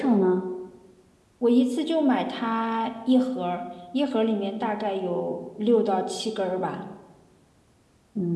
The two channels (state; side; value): identical; both; correlation 1.00